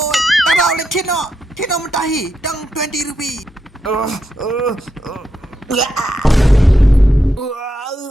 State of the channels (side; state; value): both; normal; correlation 0.83